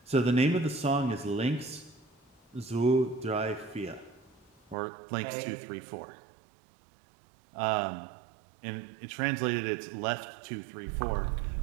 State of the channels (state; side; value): drops out; left; at 4.8 s